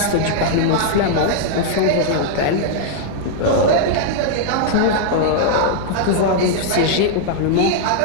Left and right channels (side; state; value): both; different; correlation -0.01